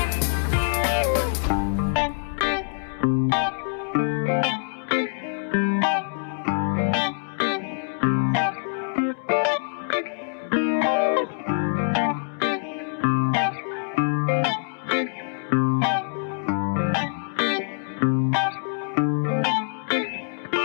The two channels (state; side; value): silent; right; digital silence